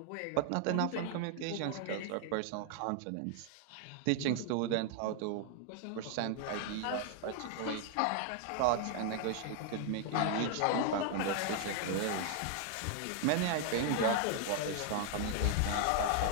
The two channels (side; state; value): both; different; correlation 0.00